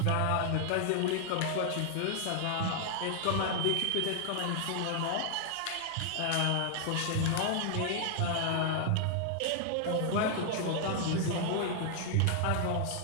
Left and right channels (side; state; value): both; different; correlation 0.00